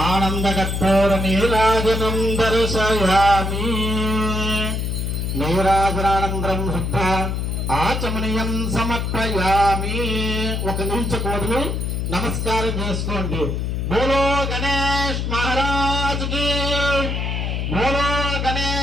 ఆనందకర్పూర నీరాజనం దర్శయామి. నీరాజనానందరం శుద్ధ ఆచమనీయం సమర్పయామి. ఒక నిలిచకూడదు, నమస్కారం చేసుకోండి. బోలో గణేష్ మహారాజ్ కి, బోలో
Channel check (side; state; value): left; noise; hum, 1 dB below the sound